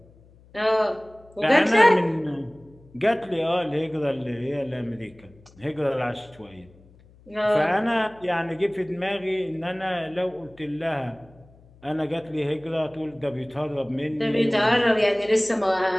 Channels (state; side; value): noise; left; hum, 26 dB below the sound